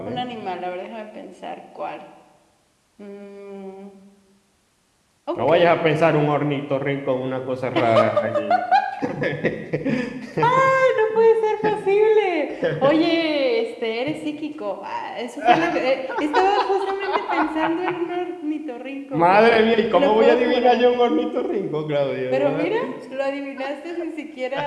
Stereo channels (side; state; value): both; identical; correlation 1.00